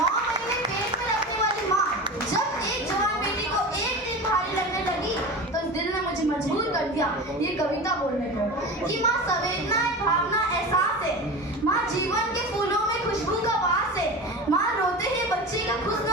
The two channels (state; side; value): normal; both; correlation 0.29